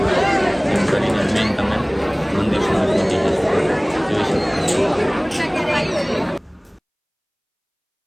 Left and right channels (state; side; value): identical; both; correlation 1.00